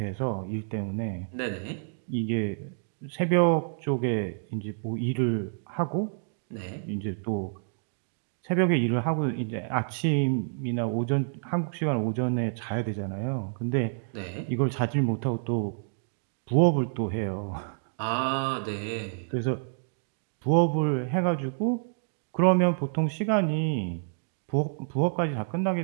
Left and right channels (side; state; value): left; silent; digital silence